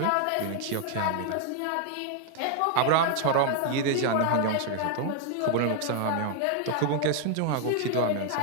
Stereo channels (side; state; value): both; different; correlation 0.00